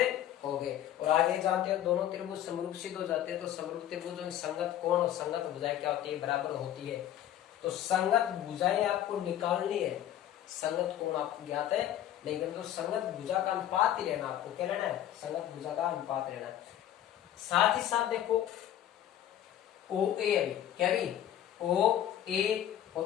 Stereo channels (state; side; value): quieter; right; 11.6 dB